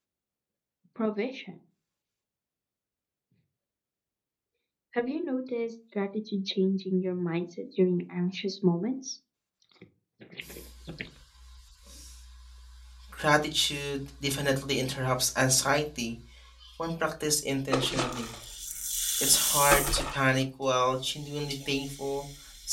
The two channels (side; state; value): both; identical; correlation 1.00